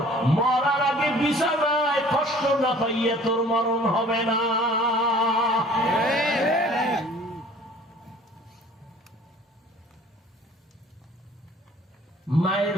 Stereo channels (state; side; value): normal; both; correlation 0.51